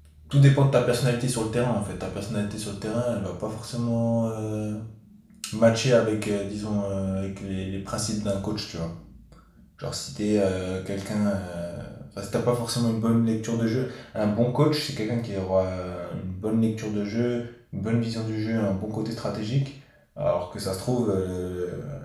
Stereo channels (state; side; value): identical; both; correlation 1.00